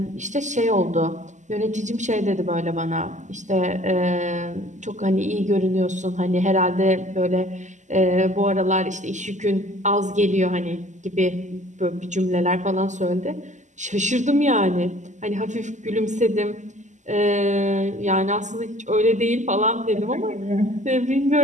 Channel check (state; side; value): late; left; 0.35 ms